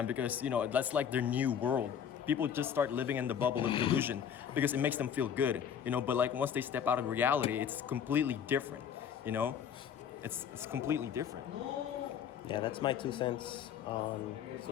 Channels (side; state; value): right; quieter; 8.3 dB